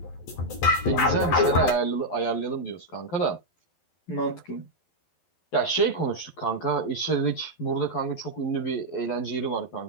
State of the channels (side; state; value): right; late; 11 ms